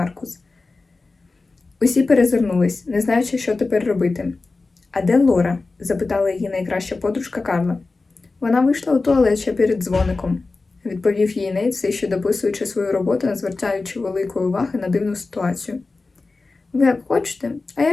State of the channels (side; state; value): right; quieter; 3.7 dB